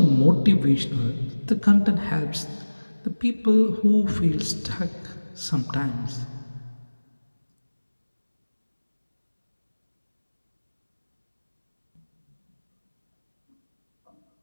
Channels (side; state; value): both; inverted; correlation -1.00